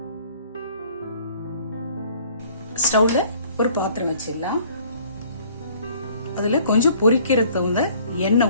ஸ்டவ்ல ஒரு பாத்திரம் வச்சிடலாம். அதுல கொஞ்சம் பொரிக்கிறதுல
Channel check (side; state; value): both; inverted; correlation -0.56